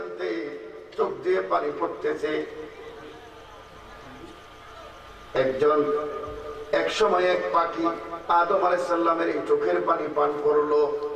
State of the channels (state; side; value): identical; both; correlation 1.00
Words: চোখ দিয়ে পানি পড়তেছে, একজন এক সময় এক পাখি আদম আলাইহিস সালামের এই চোখের পানি পান করলো।